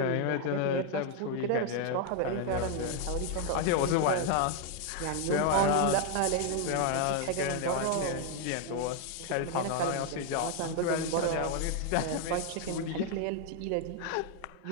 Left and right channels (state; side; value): different; both; correlation 0.01